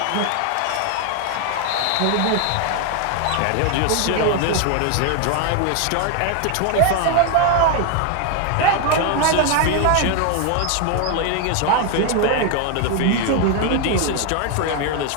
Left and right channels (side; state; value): both; different; correlation 0.01